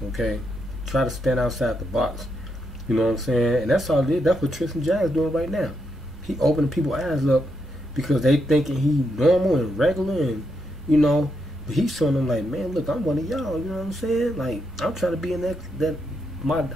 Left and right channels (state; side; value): normal; both; correlation 0.80